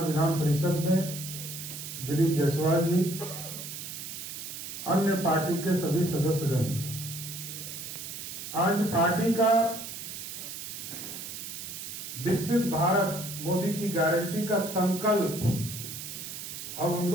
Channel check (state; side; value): noise; right; hiss, 8 dB below the sound